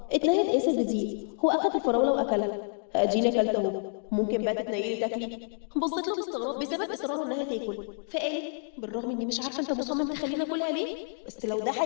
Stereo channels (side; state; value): right; silent; 59 dB below the other